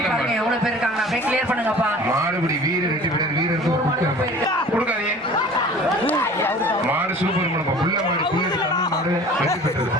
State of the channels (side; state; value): right; noise; hum, 28 dB below the sound